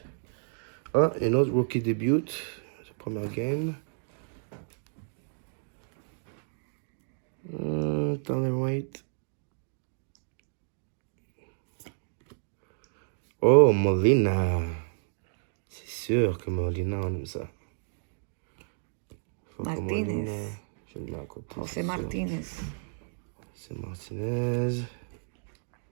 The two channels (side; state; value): left; silent; digital silence